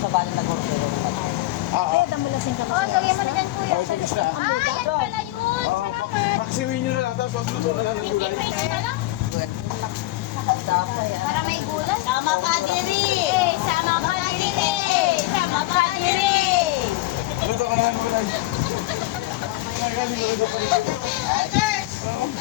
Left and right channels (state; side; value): quieter; right; 17.8 dB